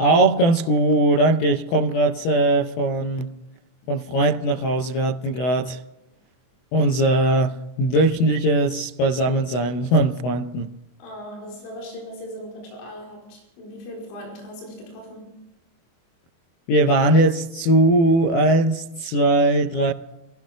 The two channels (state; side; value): late; right; 24 ms